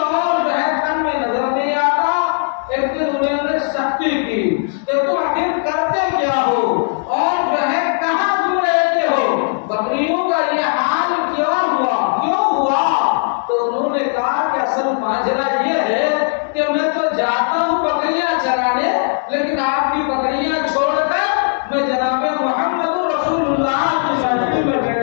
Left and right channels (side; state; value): right; silent; digital silence